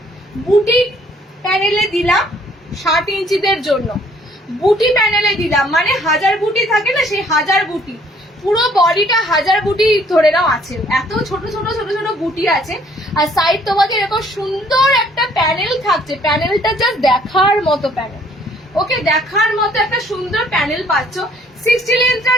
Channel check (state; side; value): normal; both; correlation 0.61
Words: বুটি প্যানেলে দিলাম 60 ইঞ্চিদের জন্য, বুটি প্যানেলে দিলাম মানে 1000 বুটি থাকে না, সেই 1000 বুটি, পুরো বডিটা 1000 বুটি ধরে নাও আছে, এত ছোট ছোট ছোট ছোট বুটি আছে। আর সাইড তোমাকে এরকম সুন্দর একটা প্যানেল থাকছে, প্যানেলটা জাস্ট দেখার মতো প্যানেল। ওকে, দেখার মতো একটা সুন্দর প্যানেল পাচ্ছ। 60 লেন্থটা